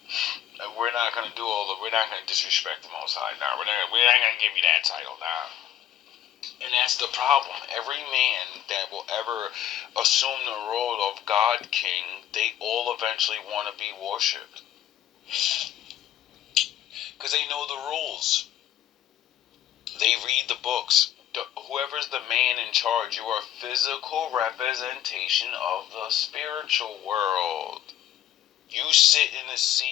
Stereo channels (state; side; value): quieter; right; 11.6 dB